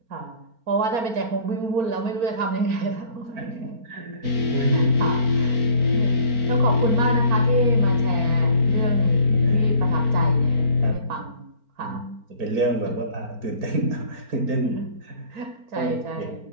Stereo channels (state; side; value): late; left; 4.4 ms